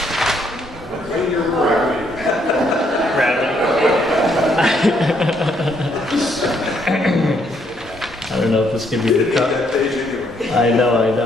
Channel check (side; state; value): both; normal; correlation 0.71